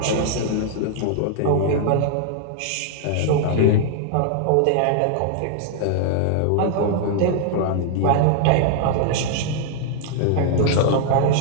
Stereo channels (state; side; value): different; both; correlation -0.01